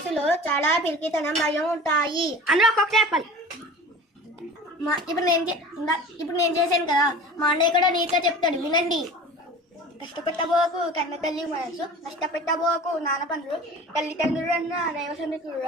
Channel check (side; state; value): both; normal; correlation 0.39